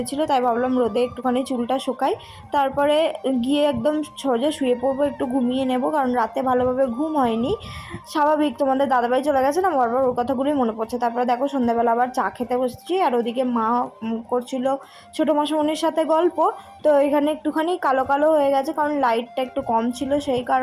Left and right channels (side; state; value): both; identical; correlation 1.00